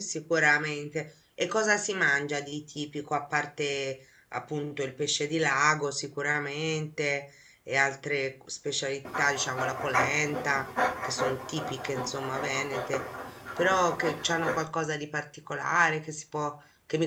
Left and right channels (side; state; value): both; identical; correlation 1.00